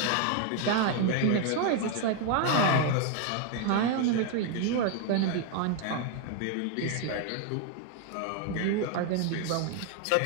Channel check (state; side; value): different; both; correlation 0.01